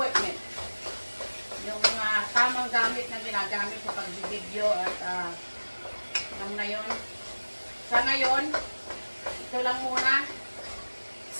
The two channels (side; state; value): both; inverted; correlation -1.00